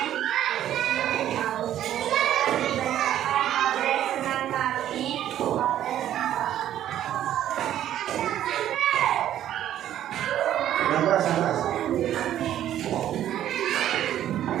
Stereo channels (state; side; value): quieter; left; 11.6 dB